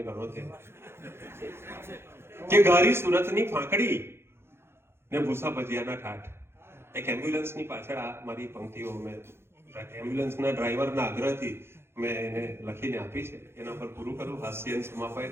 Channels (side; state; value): left; late; 0.12 ms